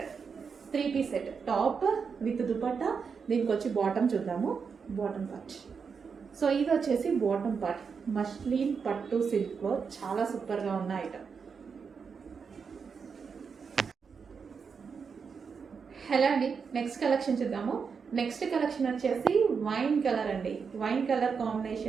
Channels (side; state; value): left; quieter; 5.8 dB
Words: set, top with dupatta. దీనికి వచ్చి బాటమ్ చూద్దాము, బాటమ్ పార్ట్. సో ఇది వచ్చేసి బాటమ్ పార్ట్, మస్లిన్ పట్టు సిల్క్లో చాలా సూపర్గా ఉన్న ఐటమ్. హలో అండి, నెక్స్ట్ కలెక్షన్ చూద్దాము. నెక్స్ట్ కలెక్షన్ వచ్చేసి వైన్ కలర్ అండి, వైన్ కలర్